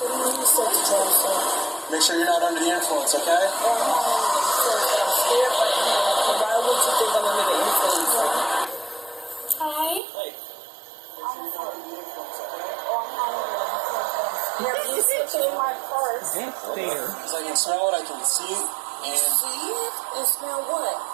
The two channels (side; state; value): left; drops out; at 10.0 s